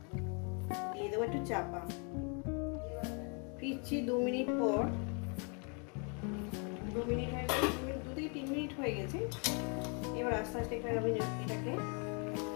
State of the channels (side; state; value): right; quieter; 36.3 dB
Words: দিয়ে দেবো একটু চাপা। ফিরছি 2 মিনিট পর। 2 মিনিট হয়ে গেছে, 2 থেকে 3 মিনিট হয়ে গেছে। এবার আস্তে আস্তে আমি এটাকে,